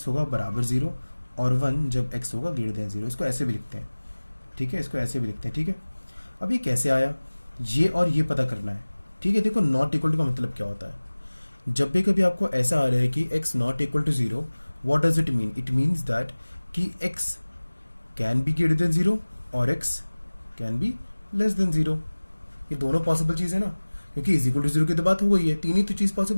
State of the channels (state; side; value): inverted; both; correlation -1.00